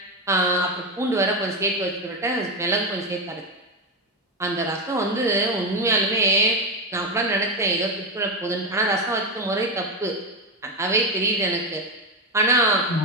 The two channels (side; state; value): both; normal; correlation 0.12